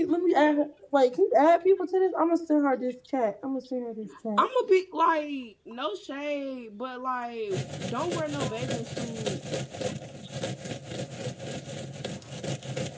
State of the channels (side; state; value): both; identical; correlation 1.00